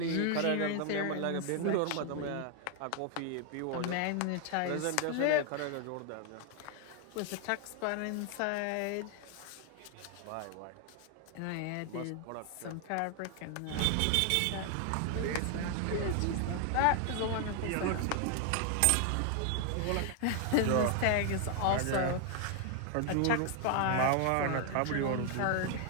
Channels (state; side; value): different; both; correlation 0.00